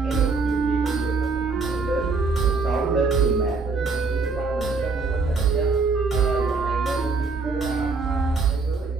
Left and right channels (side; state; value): left; quieter; 4.2 dB